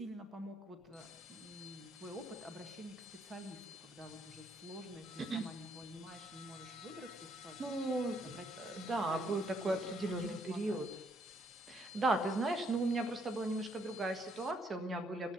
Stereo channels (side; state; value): both; normal; correlation 0.70